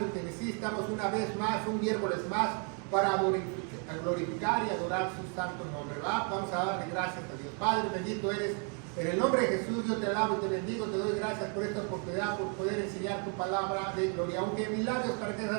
Tennessee. Estamos una vez más, un miércoles más, para glorificar y adorar su santo nombre, ¿verdad? Vamos a darle gracias a Dios. Padre, bendito eres. En el nombre de Jesús, yo te alabo y te bendigo, te doy gracias por esta oportunidad, por poder enseñar tu palabra de gloria. Aunque milagros para que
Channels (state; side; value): quieter; left; 38.8 dB